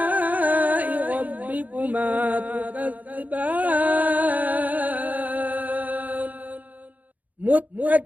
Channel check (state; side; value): late; left; 0.078 ms